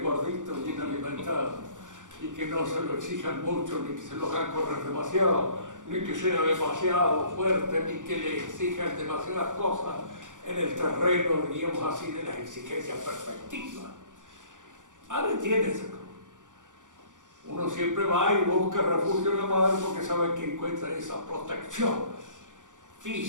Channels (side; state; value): left; late; 0.87 ms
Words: bien alimentado, y que no se lo exijan mucho, ni que se lo hagan correr demasiado, ni que sea demasiado fuerte, ni que le exijan demasiadas cosas en el terreno, diríamos así, de las exigencias perfectivas. Madre tiene esa cosa. Uno siempre va y busca refugio en la madre porque sabe que encuentra esa protección